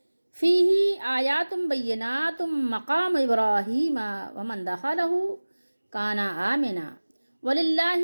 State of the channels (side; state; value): both; inverted; correlation -1.00